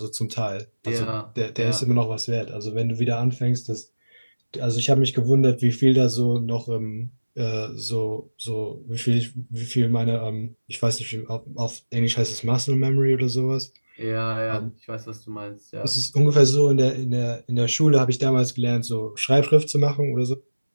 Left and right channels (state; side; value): inverted; both; correlation -1.00